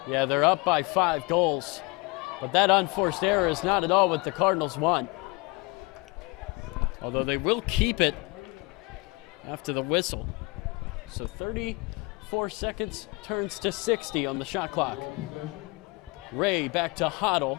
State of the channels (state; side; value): quieter; right; 26.5 dB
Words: Kevin. Yeah, they're up by 5 goals. But that unforced error is not at all what the Cardinals want. Although they will keep it after the whistle. So 34 seconds turns to 60 on the shot clock. Ray back to Hoddle.